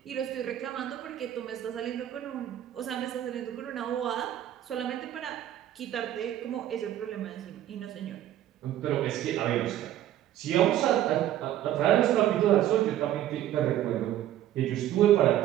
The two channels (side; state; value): left; quieter; 12.4 dB